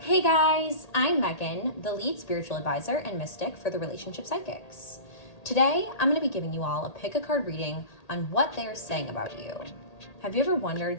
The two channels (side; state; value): right; late; 1.8 ms